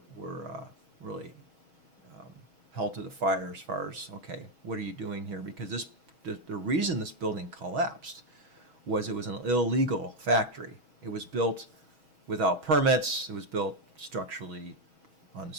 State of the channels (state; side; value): late; left; 6.2 ms